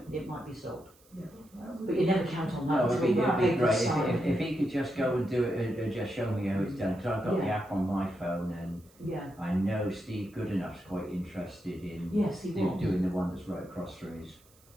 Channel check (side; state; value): right; noise; hiss, 29 dB below the sound